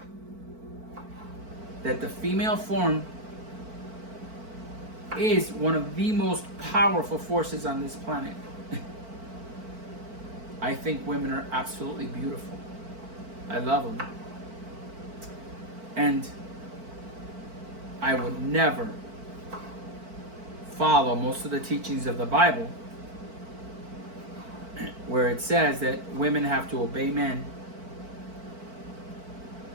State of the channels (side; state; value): left; late; 4.5 ms